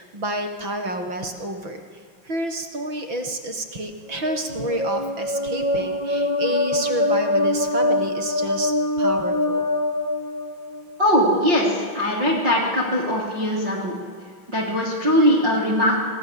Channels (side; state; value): left; late; 5.9 ms